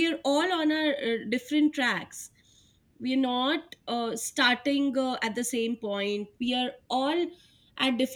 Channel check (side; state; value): both; identical; correlation 1.00